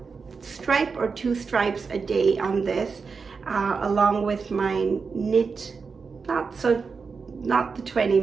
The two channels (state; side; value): quieter; left; 5.1 dB